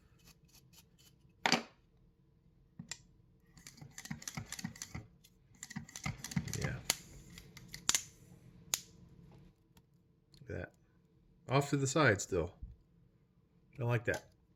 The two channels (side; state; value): both; identical; correlation 1.00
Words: Yeah. Look at that. Off to the side still. Don't like that.